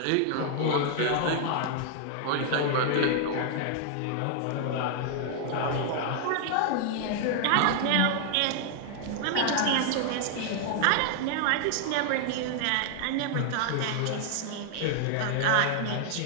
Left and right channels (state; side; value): different; both; correlation 0.00